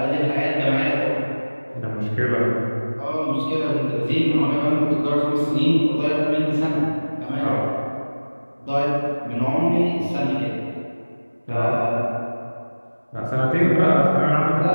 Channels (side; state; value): both; inverted; correlation -1.00